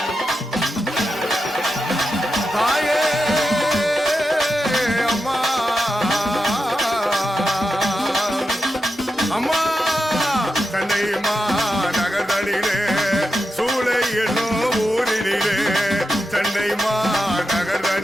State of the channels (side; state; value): both; normal; correlation 0.89